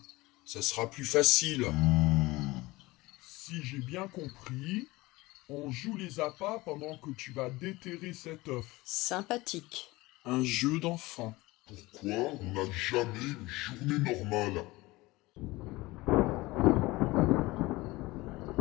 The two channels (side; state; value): right; quieter; 20.7 dB